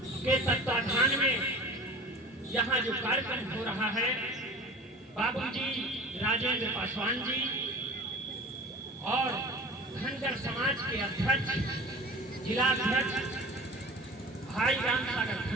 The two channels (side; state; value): both; normal; correlation 0.39